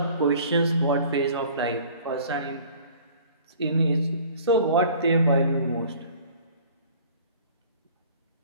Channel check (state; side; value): inverted; both; correlation -0.50